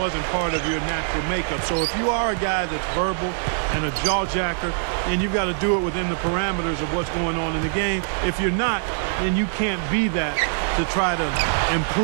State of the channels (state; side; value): silent; left; digital silence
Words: part of your natural makeup. So if you are a guy that's verbal and a jaw-jacker, then you've got to do it within the parameters of what's going on in the game. If you're not, then you can't be that to try to